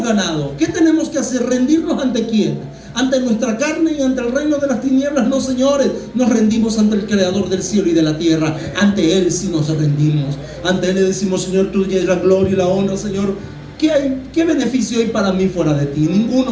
ganado. ¿Qué tenemos que hacer? ¿Rendirnos ante quién? ¿Ante nuestra carne y ante el reino de las tinieblas? No, señores. Nos rendimos ante el Creador del cielo y de la tierra. Ante Él sí nos rendimos. Ante Él le decimos: Señor, tuya es la gloria y la honra. Señor, ¿qué beneficio hay para mí fuera de ti?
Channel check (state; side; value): identical; both; correlation 1.00